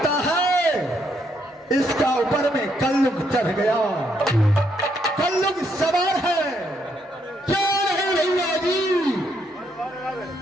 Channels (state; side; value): normal; both; correlation 0.75